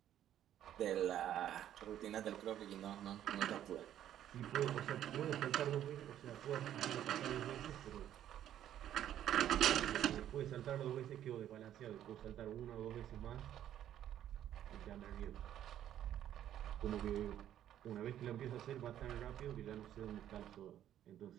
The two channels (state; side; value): quieter; left; 11.2 dB